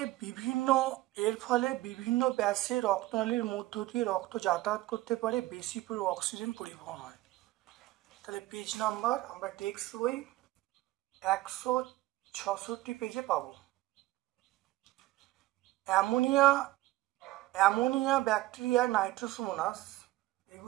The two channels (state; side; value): quieter; left; 17.6 dB